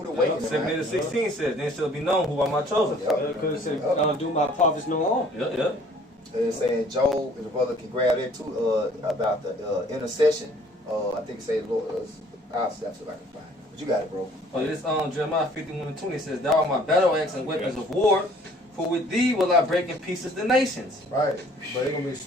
awakening. 7:16 says, "Then shall be known who are my chosen." Because it said, do my prophets no harm. Yeah. It's saying Job, and the brother can grab that too, about the intercession. I think it say Lord. I'll see if I can find it. But you got it, bro. Oh, this Jeremiah 51 and 20 says, "Thou art my battle axe and weapons of war, for with thee will I break in pieces the nations." Right. But it's gonna be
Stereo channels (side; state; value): both; normal; correlation 0.56